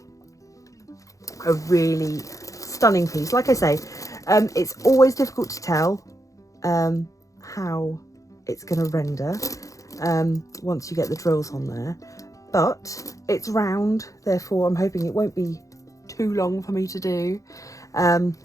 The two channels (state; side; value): late; right; 0.16 ms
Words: really stunning piece. Like I say, it's always difficult to tell how it's going to render once you get the drills on there, but it's round, therefore I'm hoping it won't be too long for me to do.